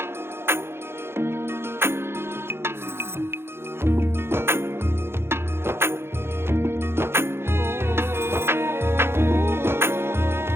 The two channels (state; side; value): late; left; 0.12 ms